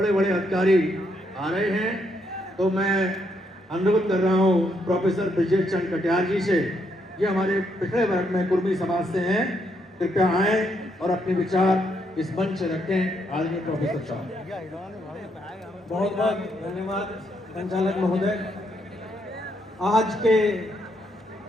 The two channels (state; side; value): normal; both; correlation 0.76